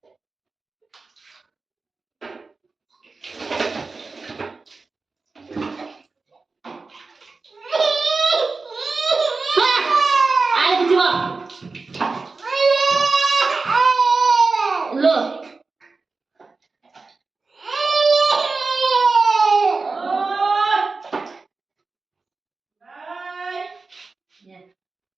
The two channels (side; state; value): left; quieter; 4.0 dB